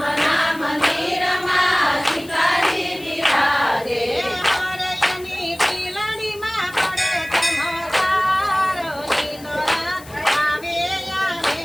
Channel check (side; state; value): left; noise; hiss, 20 dB below the sound